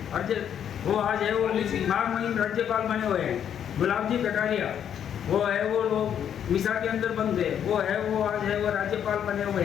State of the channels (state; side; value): quieter; right; 9.1 dB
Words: और वो आज है वो महामहिम राज्यपाल बने हुए हैं। गुलाब जी कटारिया वो है वो लोग मिसा के अंदर बंद थे, वो है वो आज है वो राज्यपाल बने हुए